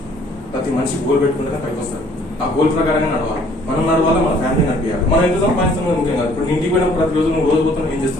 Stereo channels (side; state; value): both; normal; correlation 0.59